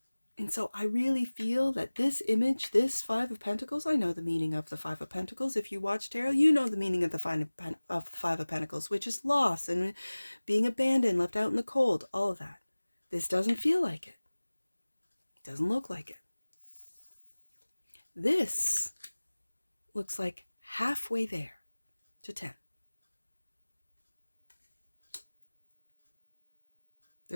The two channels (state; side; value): inverted; both; correlation -1.00